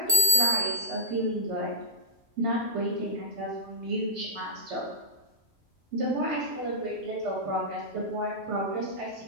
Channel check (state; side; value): normal; both; correlation -0.11